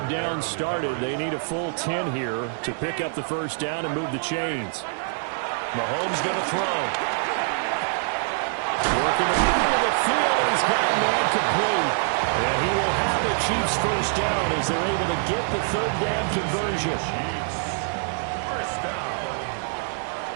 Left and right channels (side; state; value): left; silent; digital silence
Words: downs started, they need a full 10 here to pick up the first down and move the chains. Mahomes going to throw. Working the middle of the field, and he's got a man complete. And he will have the Chiefs first down as they're able to get the third down conversion. First down.